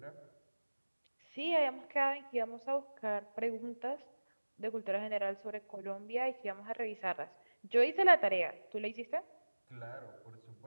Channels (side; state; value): both; inverted; correlation -1.00